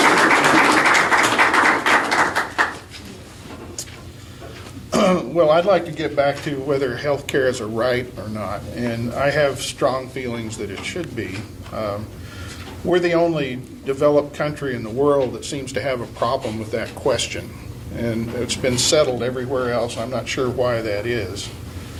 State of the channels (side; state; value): both; identical; correlation 1.00